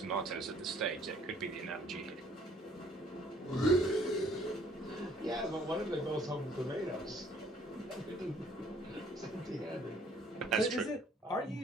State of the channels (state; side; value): normal; both; correlation 0.59